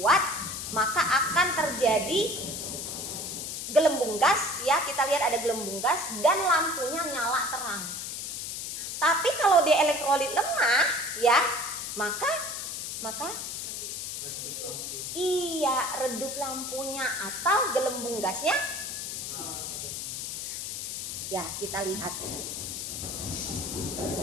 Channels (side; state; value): left; noise; hiss, 5 dB below the sound